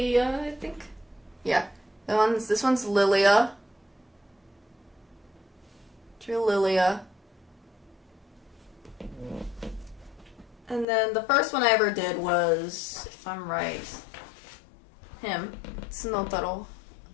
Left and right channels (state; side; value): drops out; right; at 10.9 s